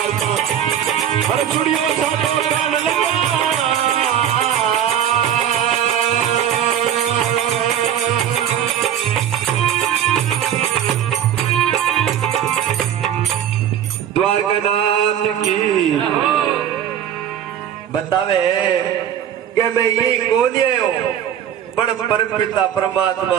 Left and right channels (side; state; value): left; quieter; 9.8 dB